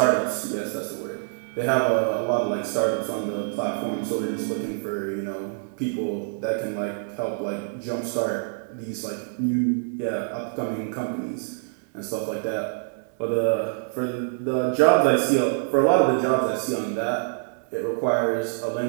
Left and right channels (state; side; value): silent; left; digital silence